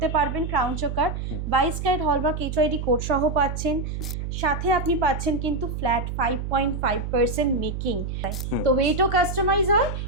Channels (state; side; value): noise; right; hum, 5 dB below the sound